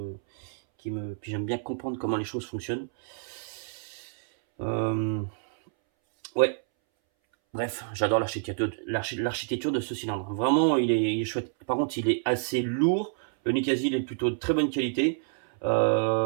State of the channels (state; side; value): silent; left; 59 dB below the other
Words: j'aime bien comprendre comment les choses fonctionnent. Ouais. Bref, j'adore l'architecture de ce cylindre. Vraiment, il est chouette. Par contre, il est assez lourd. Le Nikkasi, il est plutôt de très bonne qualité.